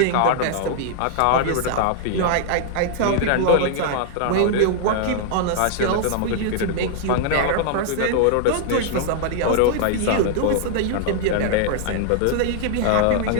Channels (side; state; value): both; different; correlation 0.00